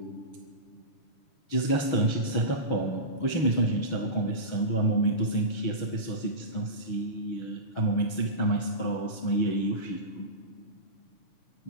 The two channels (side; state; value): right; late; 6.4 ms